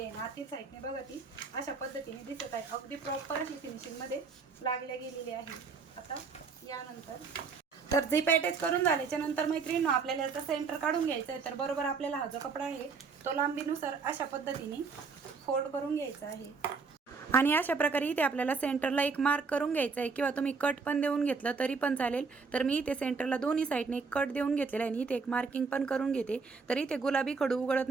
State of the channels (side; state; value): left; quieter; 4.9 dB